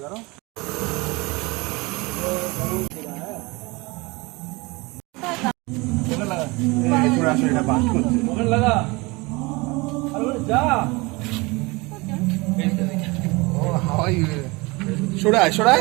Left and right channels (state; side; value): quieter; left; 24.7 dB